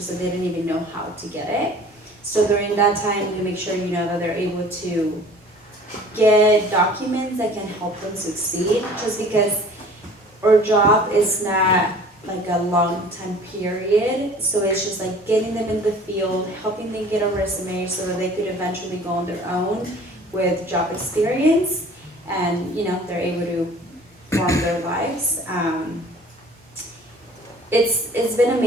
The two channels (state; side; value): normal; both; correlation 0.48